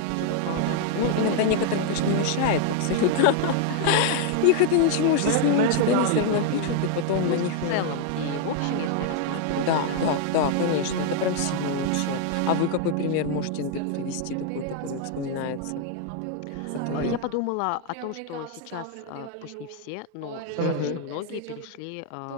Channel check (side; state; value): both; different; correlation 0.00